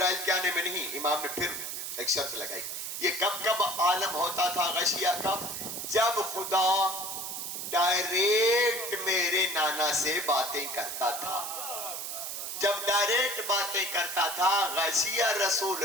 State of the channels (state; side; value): noise; right; hiss, 5 dB below the sound